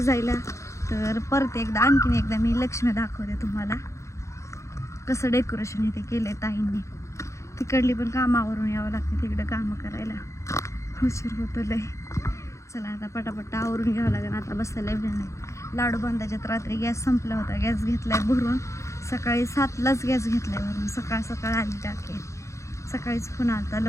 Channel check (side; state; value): right; late; 0.14 ms